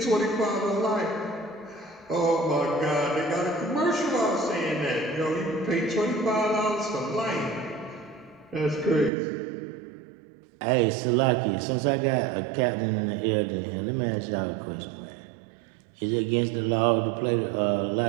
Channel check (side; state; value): left; drops out; at 9.1 s